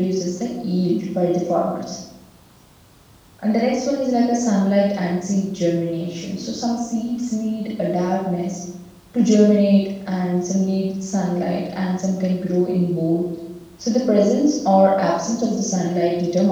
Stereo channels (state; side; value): identical; both; correlation 1.00